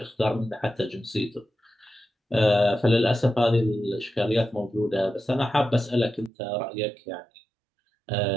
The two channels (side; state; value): left; drops out; at 6.3 s